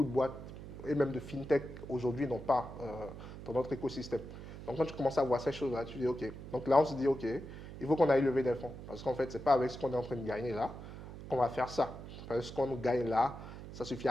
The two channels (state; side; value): noise; right; hum, 12 dB below the sound